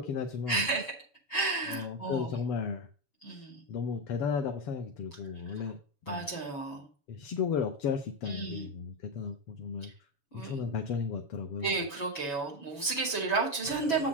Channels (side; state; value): right; late; 7.1 ms